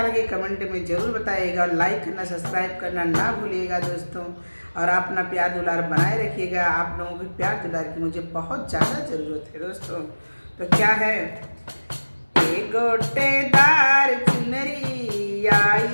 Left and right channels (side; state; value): both; inverted; correlation -1.00